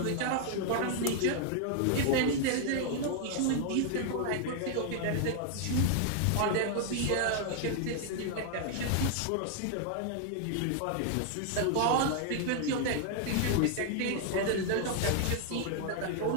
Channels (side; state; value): both; different; correlation 0.00